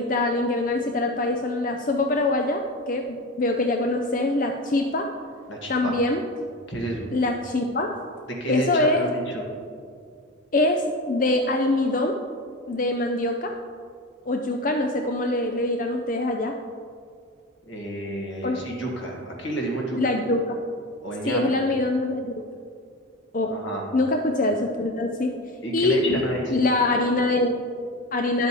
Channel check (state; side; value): normal; both; correlation 0.26